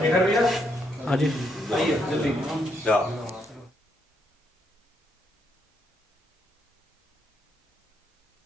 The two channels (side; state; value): both; normal; correlation 0.76